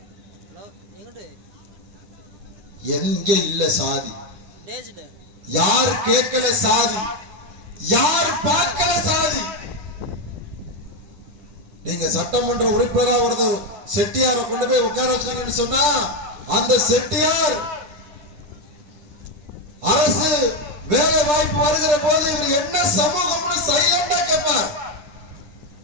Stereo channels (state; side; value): late; left; 10 ms